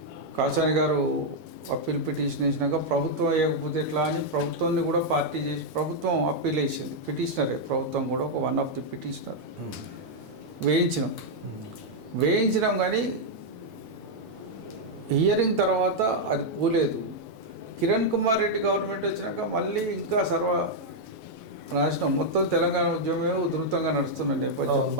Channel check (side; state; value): left; late; 8.1 ms